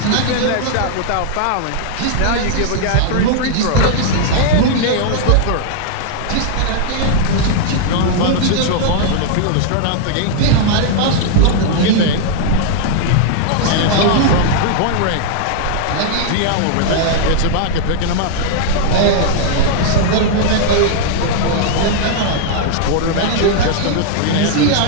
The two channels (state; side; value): different; both; correlation -0.01